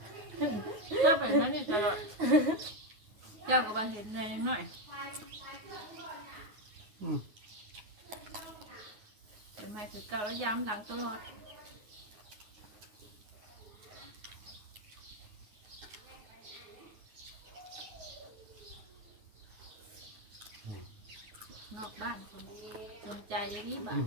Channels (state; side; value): late; left; 9.5 ms